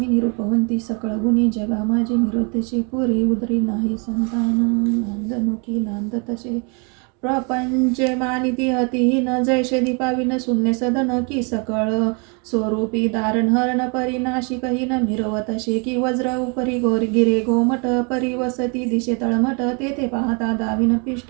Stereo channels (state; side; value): quieter; left; 34.5 dB